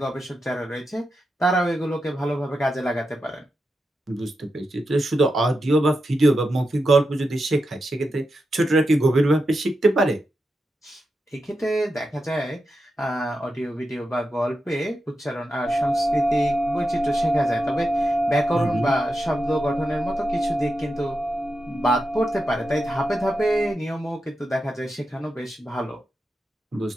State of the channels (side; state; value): both; normal; correlation 0.88